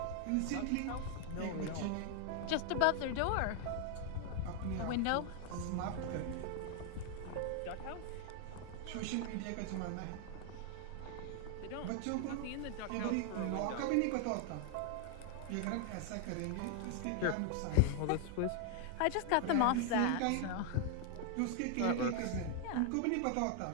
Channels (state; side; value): different; both; correlation 0.00